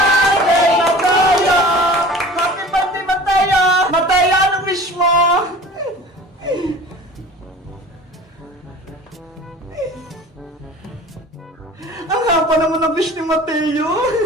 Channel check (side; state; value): both; normal; correlation 0.42